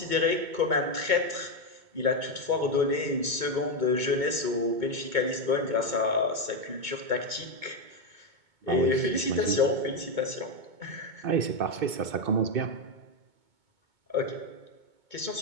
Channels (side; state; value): left; late; 2.2 ms